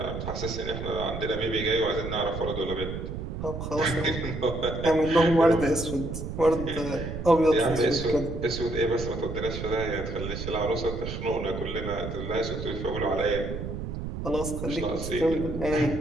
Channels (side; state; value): right; noise; rumble, 6 dB below the sound